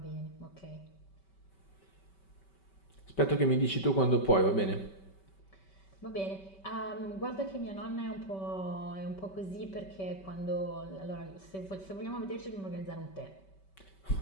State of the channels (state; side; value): late; right; 5.2 ms